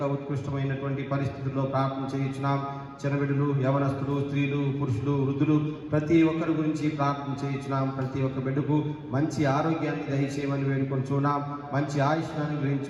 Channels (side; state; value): both; identical; correlation 1.00